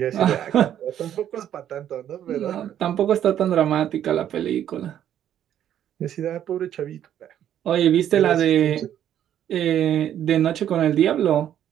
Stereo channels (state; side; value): quieter; left; 10.6 dB